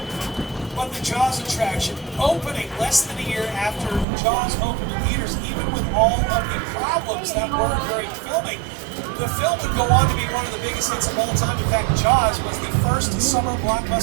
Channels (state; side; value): drops out; left; at 4.0 s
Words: But the Jaws attraction, opening less than a year after Jaws opened in theaters, even with all of the problems that were during filming, the film would go on to be one of the biggest hits of all time. In fact, Jaws was the first summer